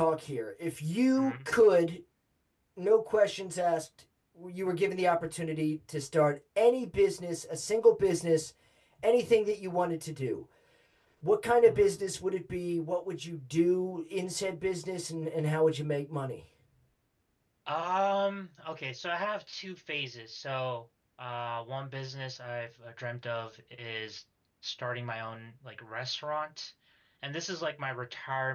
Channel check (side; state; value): both; identical; correlation 1.00